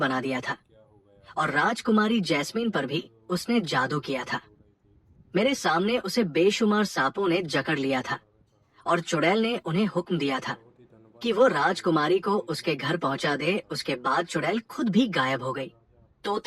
दिया था और राजकुमारी जैस्मीन पर भी उसने जादू किया था। मेरे सामने उसे बेशुमार सांपों ने जकड़ लिया था और चुड़ैल ने उन्हें हुक्म दिया था कि वो राजकुमारी को उसके घर पहुंचा दे। उसके बाद चुड़ैल खुद भी गायब हो गई।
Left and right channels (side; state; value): both; identical; correlation 1.00